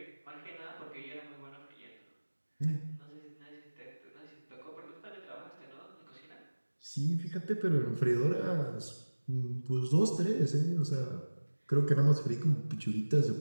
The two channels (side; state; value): both; inverted; correlation -1.00